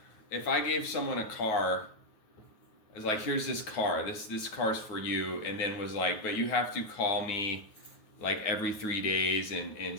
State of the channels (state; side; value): late; right; 9.3 ms